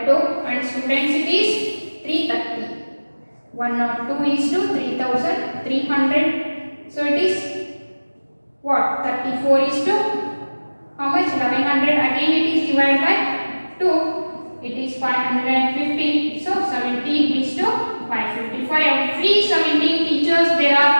and students it is 330. 102 is to 3,300. So it is what? 34 is to how much? 1100. Again it is divided by 2. It is 550. So 17 is to 555. Every 17 teachers there are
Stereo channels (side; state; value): both; inverted; correlation -1.00